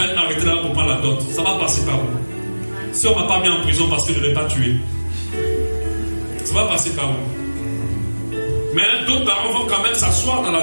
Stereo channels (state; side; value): inverted; both; correlation -1.00